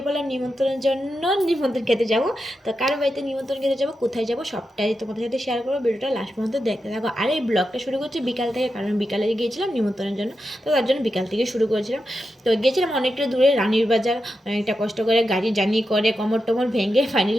পড়লাম নিমন্ত্রণের জন্য। নিমন্ত্রণ খেতে যাব। তো কারো বাড়িতে নিমন্ত্রণ খেতে যাব, কোথায় যাব সবটাই তোমাদের সাথে শেয়ার করবো। ভিডিওটা লাস্ট পর্যন্ত দেখতে থাকো। আর এই ব্লগটা শুরু করছি বিকাল থেকে, কারণ বিকালে গিয়েছিলাম নিমন্ত্রণের জন্য। তো তার জন্য বিকাল থেকে শুরু করেছিলাম। তো গিয়েছিলাম অনেকটা দূরে, রানীর বাজার। অনেকটা কষ্ট করে গাড়ি জার্নি করে কোমর টোমর ভেঙে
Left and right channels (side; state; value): both; normal; correlation 0.88